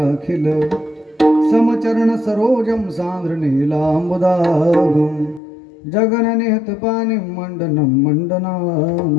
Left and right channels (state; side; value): drops out; right; at 5.4 s